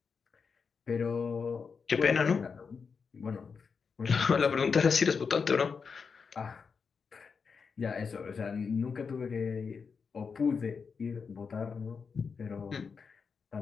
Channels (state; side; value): quieter; right; 5.5 dB